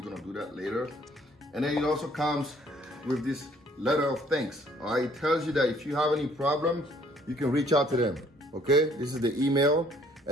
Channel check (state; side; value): normal; both; correlation 0.61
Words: gonna do that later. And then it also comes with this letter of thanks. All right, it tells you that if you have any problems, you can reach out to them. Okay, this is the email,